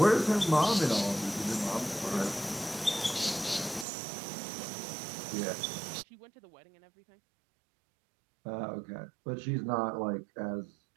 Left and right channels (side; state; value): left; drops out; at 3.9 s